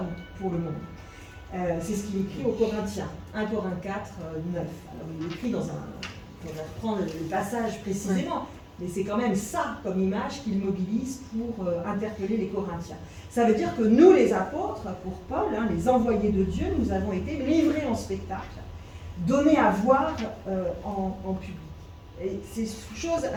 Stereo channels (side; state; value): both; identical; correlation 1.00